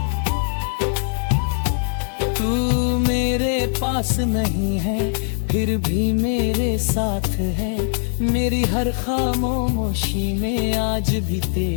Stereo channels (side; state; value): right; silent; digital silence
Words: तू मेरे पास नहीं है फिर भी मेरे साथ है, मेरी हर खामोशी में आज भी